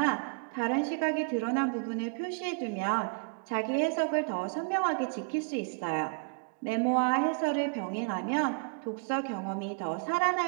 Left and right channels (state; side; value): quieter; left; 39.6 dB